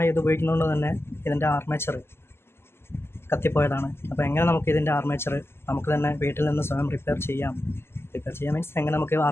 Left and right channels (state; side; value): late; right; 0.12 ms